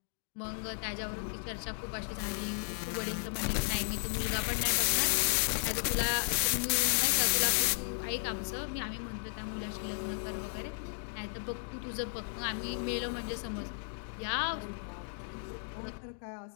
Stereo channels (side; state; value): right; silent; digital silence